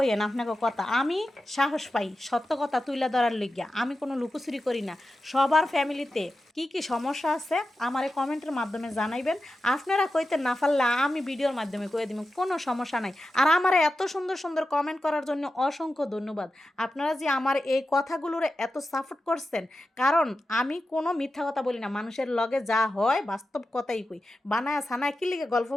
আপনাকে কথা। আমি সাহস পাই সত্য কথা তুলে ধরার লিগিয়া, আমি কোনো লুকোচুরি করি না। সবার ফ্যামিলিতে কি কি সমস্যা আছে আমারে কমেন্টের মাধ্যমে জানাইবেন। আপনারা কইতে না পারলে আমি ভিডিওর মাধ্যমে কয়ে দিব, কোনো সমস্যা নাই। আর আমার এত সুন্দর সুন্দর কমেন্ট করার জন্য অসংখ্য ধন্যবাদ। আপনারা যে আমার এই কথাগুলোর এত সাপোর্ট করছেন, কারণ আমি কোনো মিথ্যা কথা বলি না, মানুষের লগে যা হয় বাস্তব কথাই কই। বানায় সানায় কি লিগে গল্প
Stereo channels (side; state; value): both; normal; correlation 0.91